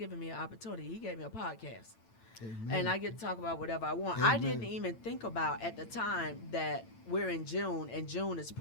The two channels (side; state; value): right; late; 8.9 ms